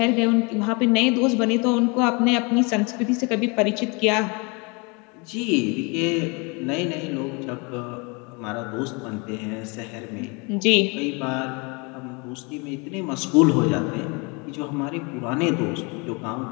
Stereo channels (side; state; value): right; quieter; 30.3 dB